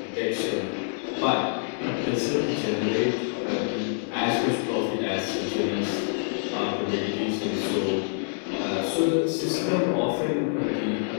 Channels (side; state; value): right; silent; digital silence